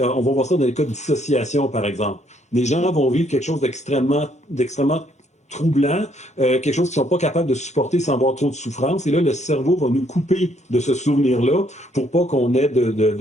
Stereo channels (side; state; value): both; normal; correlation 0.68